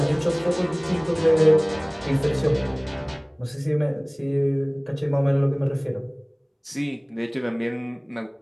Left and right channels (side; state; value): both; identical; correlation 1.00